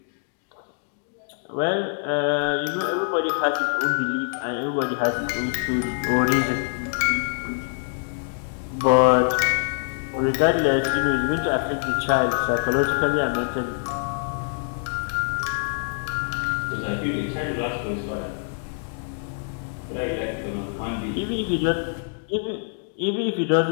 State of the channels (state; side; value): silent; right; digital silence